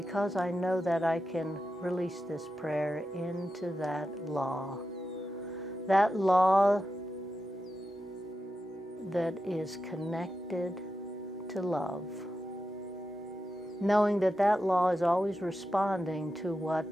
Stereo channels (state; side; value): normal; both; correlation 0.90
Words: I know that, I can release this prayer into that law that is connected to love, knowing that that law is always responding to